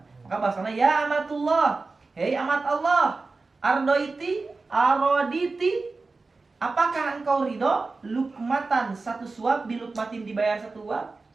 maka bahasanya ya amatullah, hei amat Allah, ardoiti aroditi, apakah engkau ridho lukmatan, satu suap, bilukmatin dibayar satu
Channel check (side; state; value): left; quieter; 3.8 dB